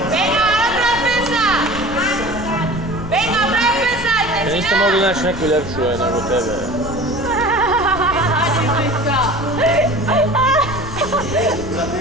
Venga, otra defensa! Venga, otra defensa! Niste mogli naći neku ljepšu nego tebe.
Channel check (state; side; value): noise; left; rumble, 12 dB below the sound